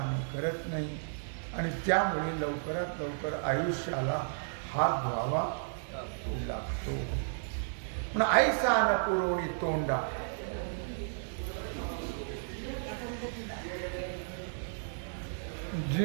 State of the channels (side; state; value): left; silent; digital silence